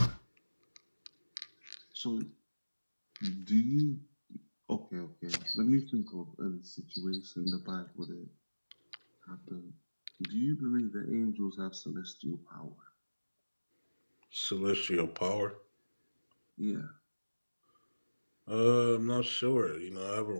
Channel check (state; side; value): inverted; both; correlation -1.00